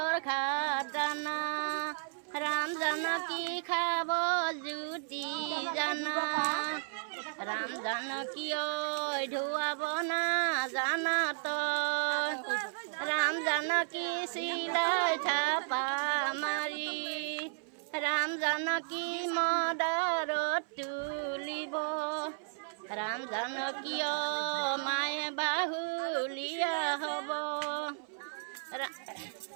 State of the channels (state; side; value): silent; left; 55 dB below the other